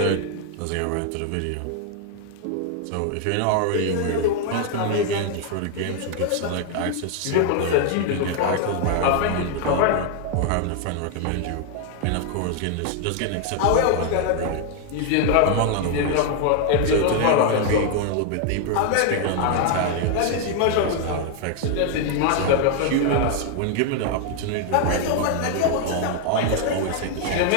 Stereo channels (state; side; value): different; both; correlation 0.00